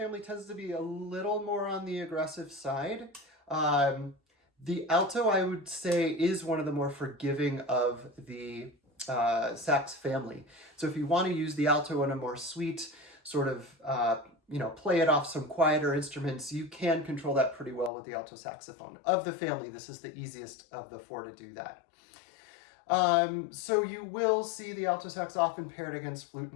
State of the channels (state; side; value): drops out; right; at 17.9 s